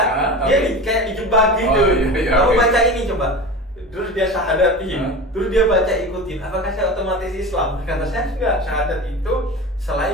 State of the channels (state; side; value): normal; both; correlation 0.31